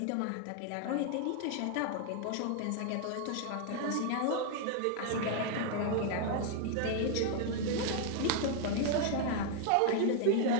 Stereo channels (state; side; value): different; both; correlation 0.00